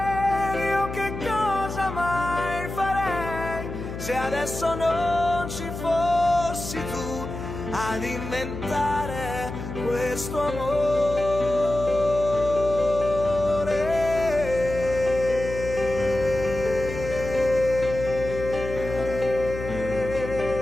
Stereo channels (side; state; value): left; noise; hum, 8 dB below the sound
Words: io che cosa mai farei se adesso non ci fossi tu ad inventare questo amore.